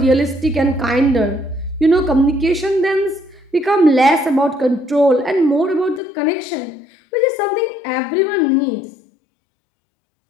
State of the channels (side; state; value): right; drops out; at 6.0 s